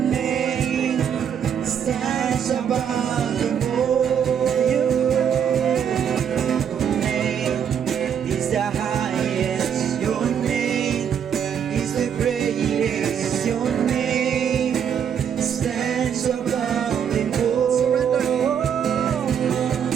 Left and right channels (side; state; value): left; quieter; 8.2 dB